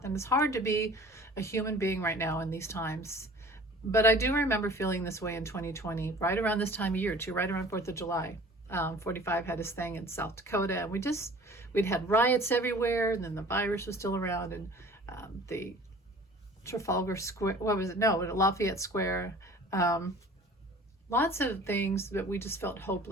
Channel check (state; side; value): normal; both; correlation 0.46